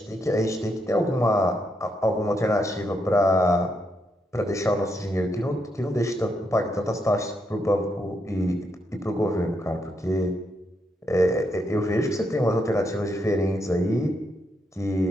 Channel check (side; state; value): both; normal; correlation 0.79